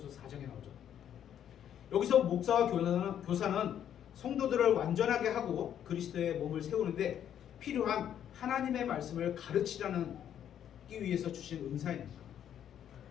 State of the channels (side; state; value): right; quieter; 9.8 dB